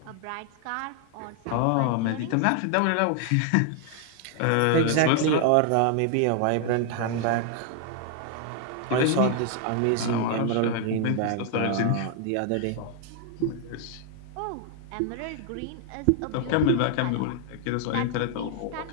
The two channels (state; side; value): different; both; correlation 0.00